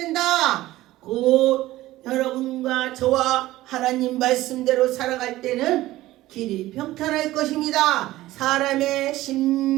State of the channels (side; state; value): left; quieter; 16.5 dB